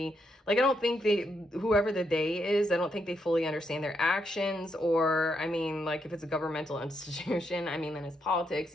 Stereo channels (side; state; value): both; normal; correlation 0.80